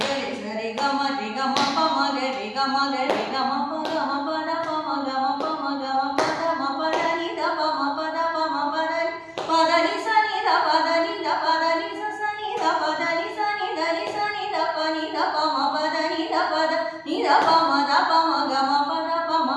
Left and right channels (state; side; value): identical; both; correlation 1.00